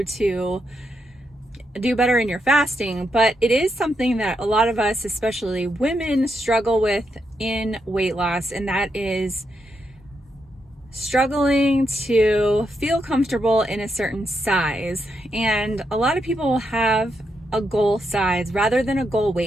to do better in your fasting, but it is something that a lot of us, especially women, struggle with in weight loss, and that is struggling to feel comfortable in a certain size. And a lot of people will have a goal size rather than a goal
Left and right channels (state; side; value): normal; both; correlation 0.82